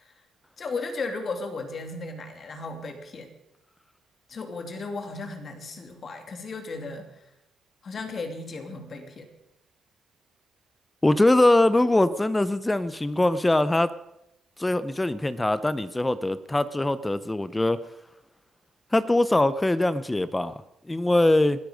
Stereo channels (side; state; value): both; normal; correlation 0.98